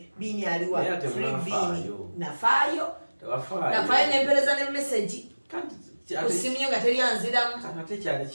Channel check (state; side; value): inverted; both; correlation -1.00